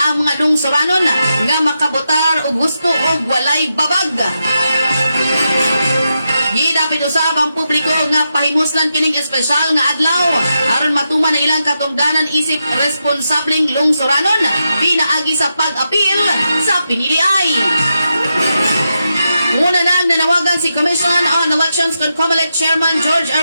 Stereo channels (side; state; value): both; inverted; correlation -0.87